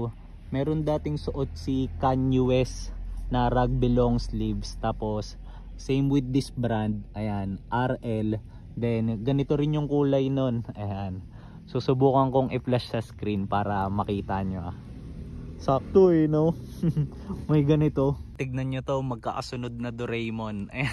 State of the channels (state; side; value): identical; both; correlation 1.00